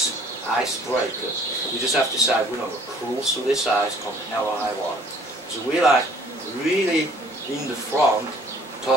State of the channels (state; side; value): normal; both; correlation 0.56